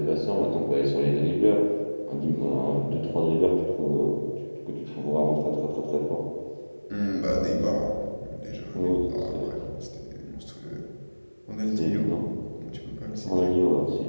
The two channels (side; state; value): both; inverted; correlation -1.00